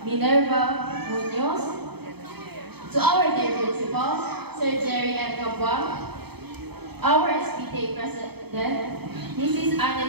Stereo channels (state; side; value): late; left; 0.97 ms